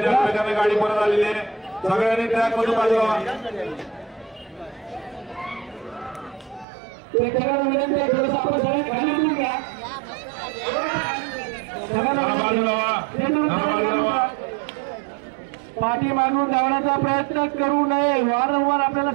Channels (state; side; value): drops out; left; at 6.7 s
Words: त्या वेगाने गाडी परत आलेली आहे. सगळ्यांनी ट्रॅक मधून बाजूला. प्रेक्षकांना विनंती आहे थोडंसं आपण सगळे खाली उतरून घ्या. पाठी मागून धावण्याचा प्रयत्न करू नये. वारंवार आपल्याला